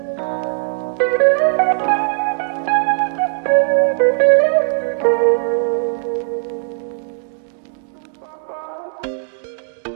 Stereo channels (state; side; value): silent; left; digital silence